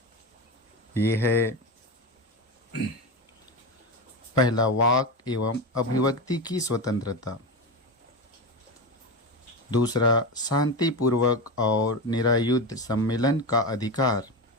ये है, पहला, वाक एवं अभिव्यक्ति की स्वतंत्रता। दूसरा, शांतिपूर्वक और निरायुध सम्मेलन का अधिकार।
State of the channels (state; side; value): normal; both; correlation 0.19